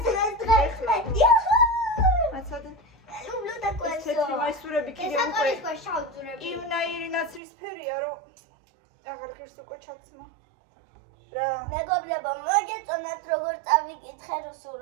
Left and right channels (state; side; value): drops out; left; at 7.4 s